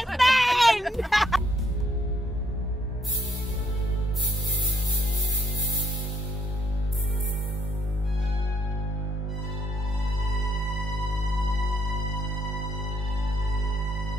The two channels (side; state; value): both; normal; correlation 0.70